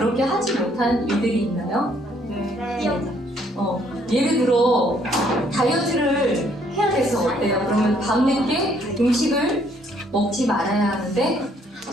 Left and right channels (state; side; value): normal; both; correlation 0.66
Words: 하지 못한 일들이 있나요? 예를 들어 다이어트를 해야 돼서 어때요? 그러면 밤늦게 음식을 먹지 말아야 하는데